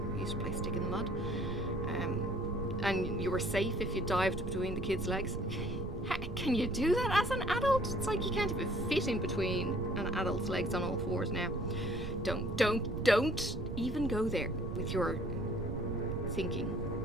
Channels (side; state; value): right; noise; rumble, 5 dB below the sound